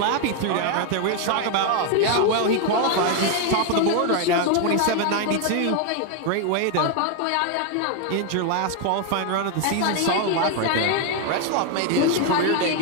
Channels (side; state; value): both; different; correlation 0.01